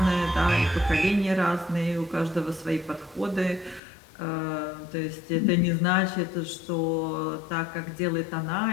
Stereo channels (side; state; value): right; drops out; at 3.8 s